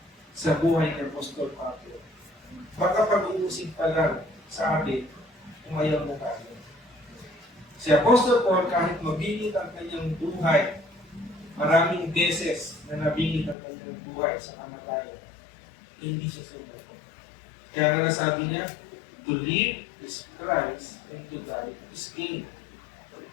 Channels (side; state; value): right; drops out; at 13.6 s